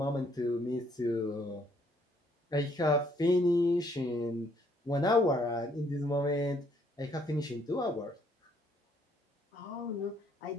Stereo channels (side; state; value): both; normal; correlation 0.67